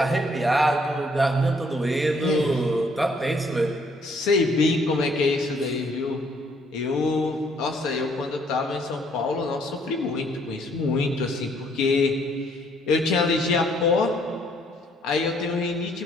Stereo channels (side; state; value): both; normal; correlation 0.66